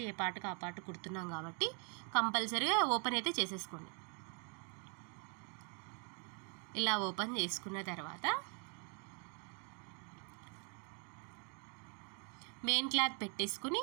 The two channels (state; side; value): quieter; left; 38.3 dB